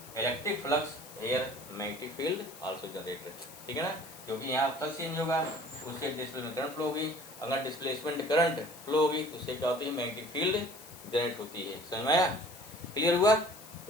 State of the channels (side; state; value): left; noise; hiss, 17 dB below the sound